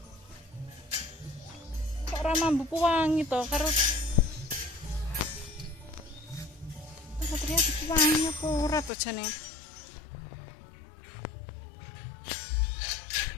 Mambu wangi to karo Satria wangi apa ora to jane.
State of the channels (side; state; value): right; drops out; at 8.9 s